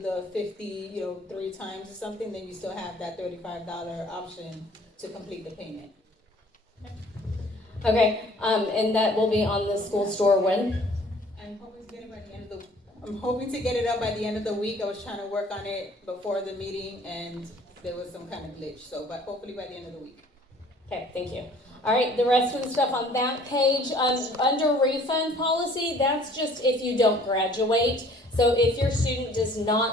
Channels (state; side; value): normal; both; correlation 0.54